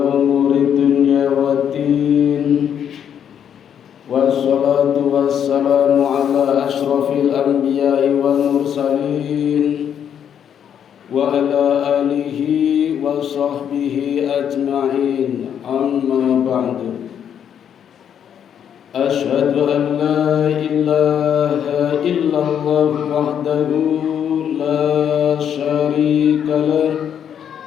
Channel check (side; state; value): right; quieter; 8.8 dB